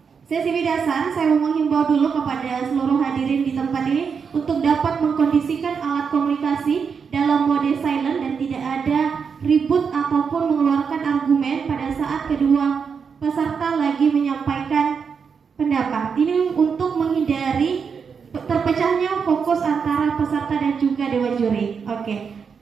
sesi bidasan, saya mau menghimbau dulu kepada seluruh hadirin di tempat ini untuk dapat mengkondisikan alat komunikasi dalam mode silent dan tidak ada ribut ataupun mengeluarkan argumen pada saat kedua peserta lagi menyampaikan pendapat. Ini untuk menghindari Setelahnya fokus antara peserta dan juga dewan juri. Oke.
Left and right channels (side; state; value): left; quieter; 6.1 dB